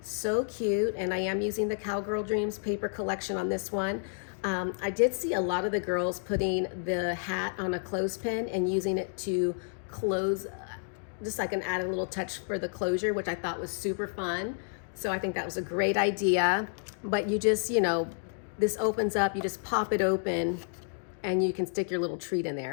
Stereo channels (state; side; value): silent; right; 58 dB below the other